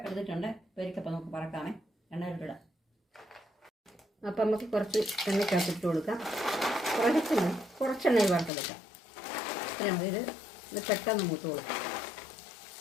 എടുത്തിട്ടുണ്ട്. ഉപ്പേരിക്കപ്പം നമുക്ക് പറക്കാമേ, എണ്ണയിലിടാം. അപ്പം നമുക്ക് കുറച്ച് എണ്ണയ്ക്കകത്തിട്ട് കൊടുക്കാം. കുറച്ച് എണ്ണയിൽ വറുത്തെടുക്കാം. അപ്പം നമുക്കിത് പെട്ടെന്ന് മൂത്ത് കൊടുക്കാം.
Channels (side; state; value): right; drops out; at 8.5 s